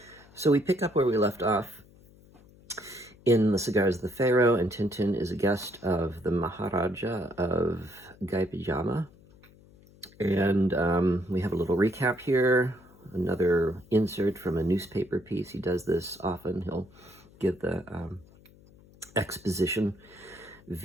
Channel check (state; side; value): noise; left; hum, 25 dB below the sound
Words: So we pick up where we left off in The Cigars of the Pharaoh, and Tintin is a guest of the Maharaja of Gaipajama. And we have a little recap here, another insert from a newspaper piece. He does this often. He'll give the exposition